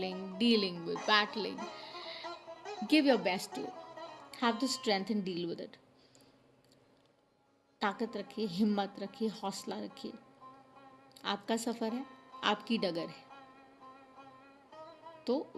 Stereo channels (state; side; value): identical; both; correlation 1.00